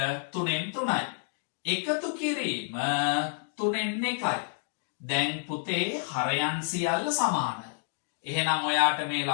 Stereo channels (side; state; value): right; silent; digital silence